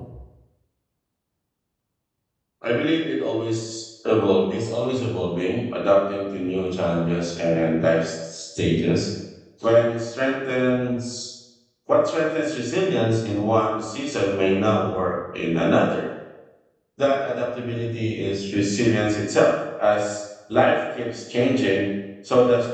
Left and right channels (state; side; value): identical; both; correlation 1.00